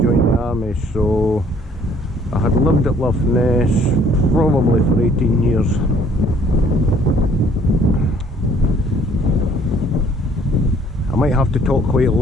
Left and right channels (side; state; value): both; normal; correlation 0.60